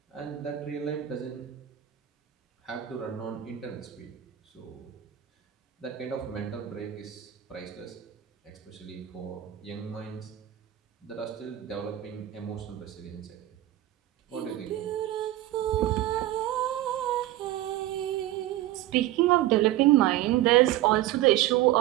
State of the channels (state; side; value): quieter; left; 14.1 dB